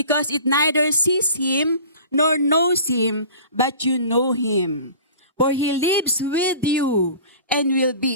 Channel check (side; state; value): both; inverted; correlation -0.42